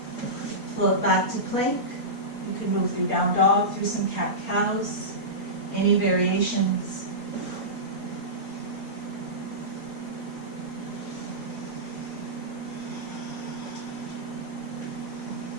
Float back to plank. You can move through down dog, through some cat-cows. Any variations.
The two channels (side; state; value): right; late; 4.3 ms